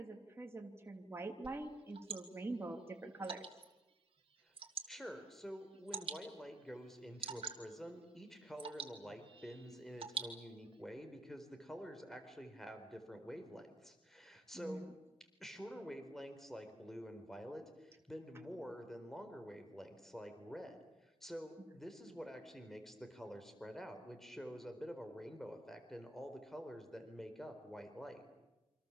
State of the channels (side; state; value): both; normal; correlation 0.75